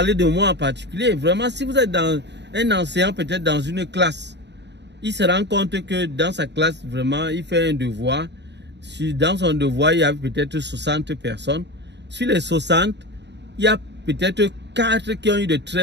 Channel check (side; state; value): left; late; 0.50 ms